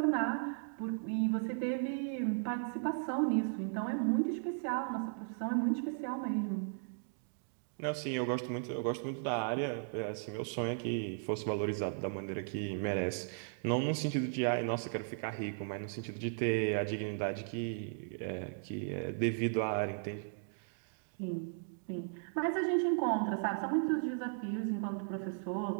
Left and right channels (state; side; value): silent; left; digital silence